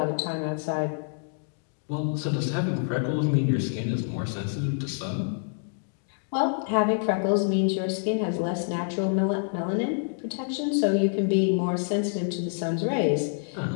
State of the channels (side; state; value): right; silent; digital silence